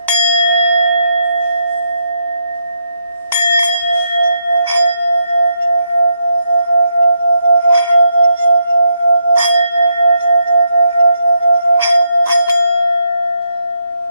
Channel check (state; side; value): inverted; both; correlation -0.80